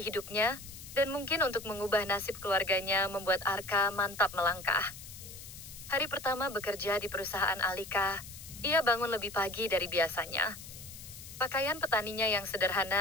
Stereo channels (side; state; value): left; noise; hiss, 14 dB below the sound